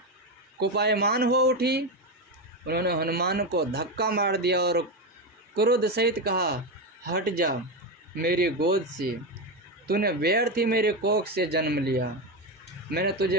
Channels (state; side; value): normal; both; correlation 0.13